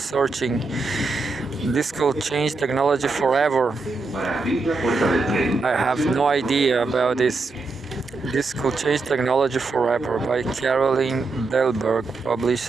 This could change technology forever. I have no idea about this. This Could Change Technology Forever by Caroline Delberg,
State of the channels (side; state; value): left; quieter; 3.7 dB